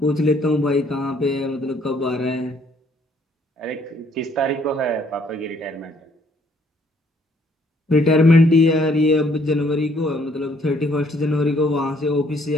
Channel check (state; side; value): normal; both; correlation 0.65